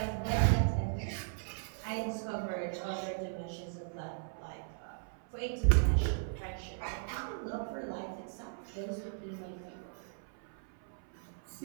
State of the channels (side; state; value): left; silent; 53 dB below the other